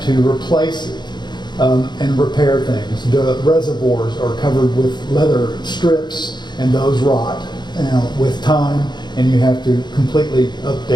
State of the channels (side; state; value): right; late; 0.21 ms